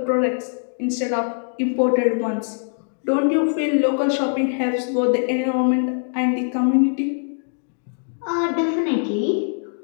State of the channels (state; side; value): silent; right; digital silence